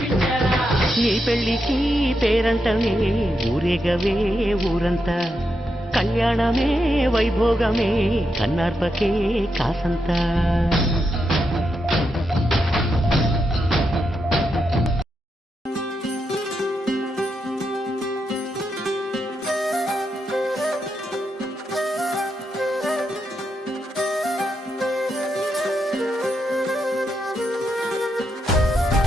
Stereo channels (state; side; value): normal; both; correlation 0.84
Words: నీ పెళ్లికి పేరంటమే ఊరేగవే ఊరంతా కళ్యాణమే వైభోగమే కన్నార్పకే కాసంతా